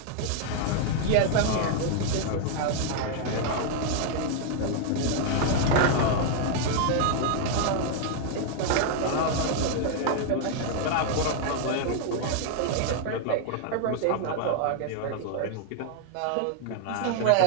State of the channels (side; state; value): both; different; correlation 0.00